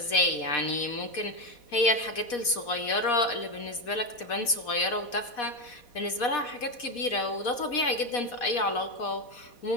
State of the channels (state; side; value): late; right; 4.1 ms